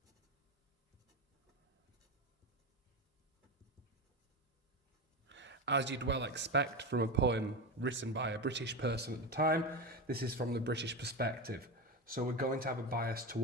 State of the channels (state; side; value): normal; both; correlation 0.19